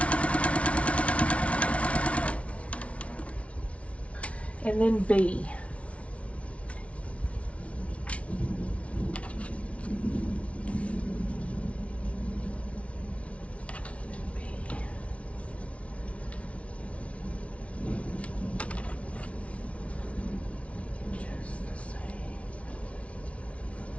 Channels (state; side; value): late; right; 0.063 ms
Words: And then B.